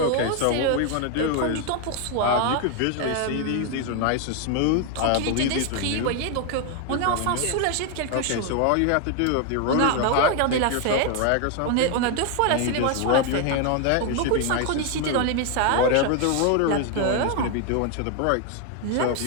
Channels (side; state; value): both; different; correlation 0.01